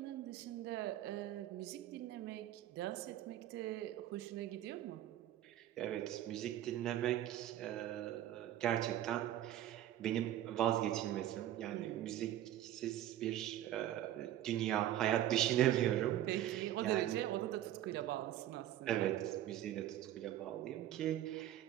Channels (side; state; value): left; quieter; 12.7 dB